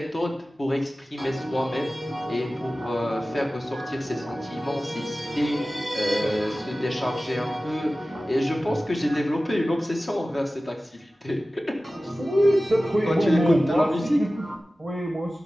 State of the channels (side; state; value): both; normal; correlation 0.96